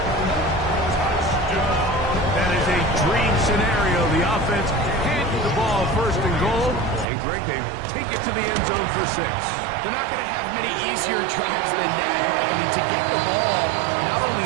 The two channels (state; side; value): drops out; left; at 7.1 s